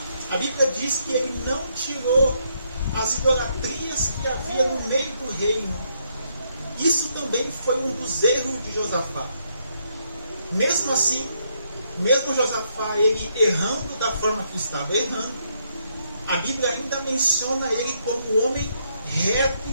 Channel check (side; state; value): both; inverted; correlation -0.75